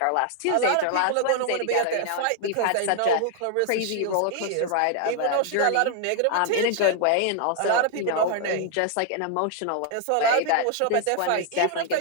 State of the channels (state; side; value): different; both; correlation 0.00